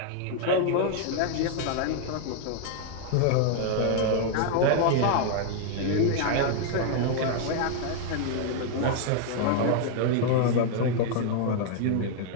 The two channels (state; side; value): different; both; correlation 0.00